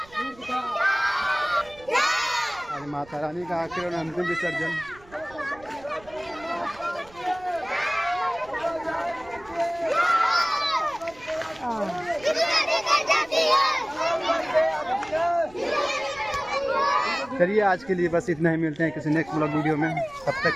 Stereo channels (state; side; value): noise; right; rumble, 24 dB below the sound